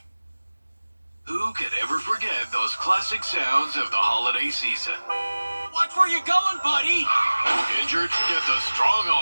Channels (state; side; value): inverted; both; correlation -1.00